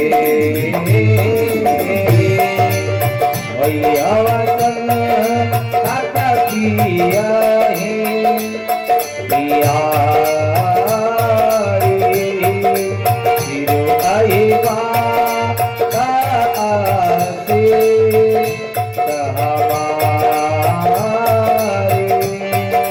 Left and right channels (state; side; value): identical; both; correlation 1.00